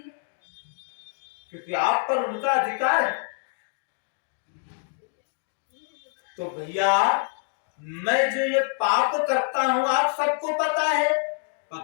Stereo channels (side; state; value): right; silent; digital silence